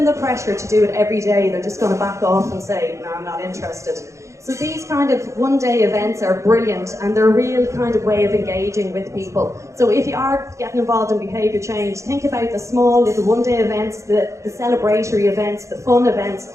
the pressure to do it every day, they're just going to back off and say, no, I'm not interested. So these kind of one-day events are brilliant, and they're a real kind of way of engaging with people. So if you are getting involved in behaviour change, think about the small little one-day events, the celebratory events, the fun events,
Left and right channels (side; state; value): left; late; 0.14 ms